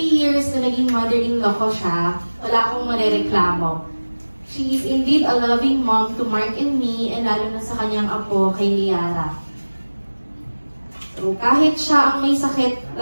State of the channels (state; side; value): inverted; both; correlation -1.00